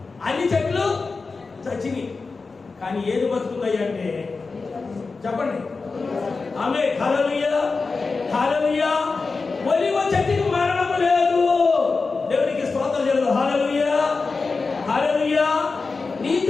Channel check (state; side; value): quieter; right; 4.2 dB